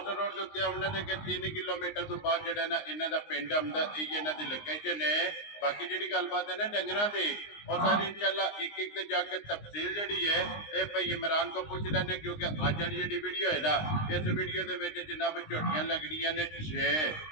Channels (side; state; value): right; late; 19 ms